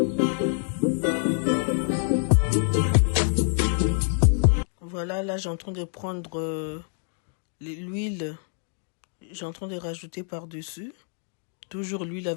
Voilà, là j'ai en train de prendre l'huile. J'ai en train de rajouter par-dessus. Toujours l'huile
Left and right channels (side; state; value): right; silent; 56 dB below the other